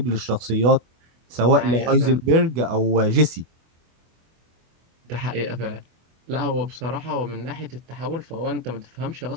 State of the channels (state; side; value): late; left; 24 ms